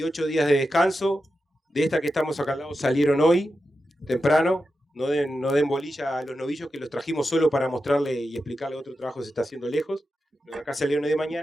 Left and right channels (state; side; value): normal; both; correlation 0.90